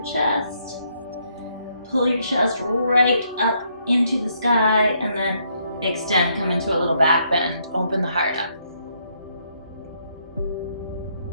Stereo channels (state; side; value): inverted; both; correlation -0.73